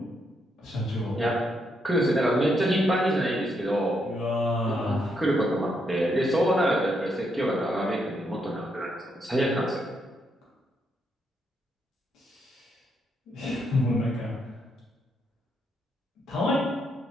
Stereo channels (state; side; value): normal; both; correlation 0.78